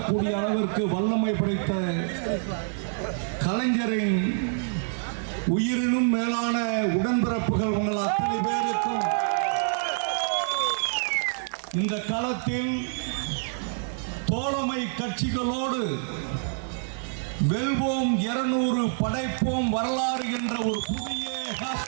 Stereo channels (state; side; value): silent; left; 60 dB below the other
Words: கூடிய அளவிற்கு வல்லமை படைத்த கலைஞரின் உயிரினும் மேலான உடன்பிறப்புகள் உங்கள் அத்தனை பேருக்கும் இந்த களத்தில் தோழமை கட்சிகளோடு வெல்வோம் 200 படைப்போம் வரலாறு என்ற ஒரு புதிய